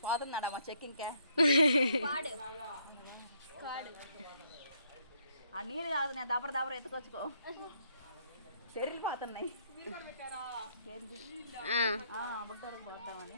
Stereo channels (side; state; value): both; inverted; correlation -0.70